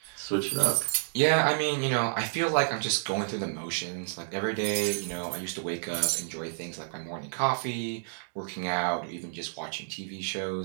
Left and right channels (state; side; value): silent; left; digital silence